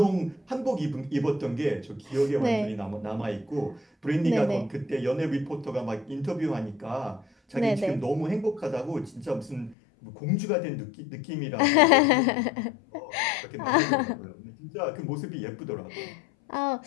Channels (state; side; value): drops out; right; at 9.8 s